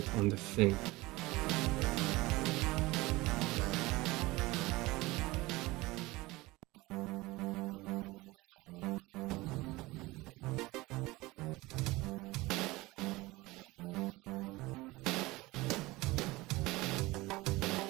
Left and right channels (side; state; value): left; quieter; 20.8 dB